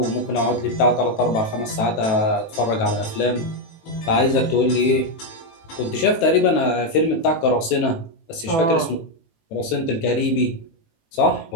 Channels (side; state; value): right; late; 18 ms